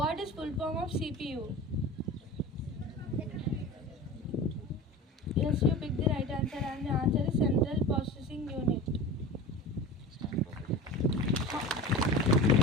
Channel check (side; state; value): both; normal; correlation 0.33